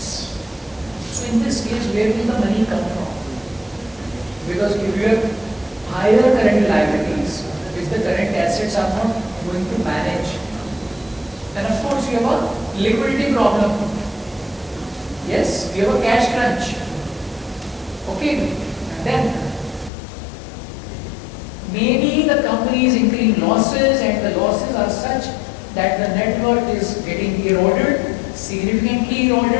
So in this case, where will the money come from? Because if you have higher current liabilities, which the current assets are not going to manage, then of course you have a liquidity problem. Yes, you have a cash crunch. Okay, and then maybe the company is incurring losses and the losses are such that the net worth is getting eroded, significantly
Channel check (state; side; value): drops out; right; at 19.9 s